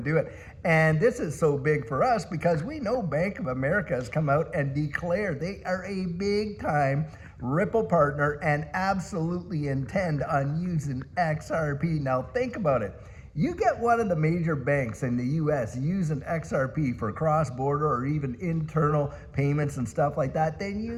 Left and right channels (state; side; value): identical; both; correlation 1.00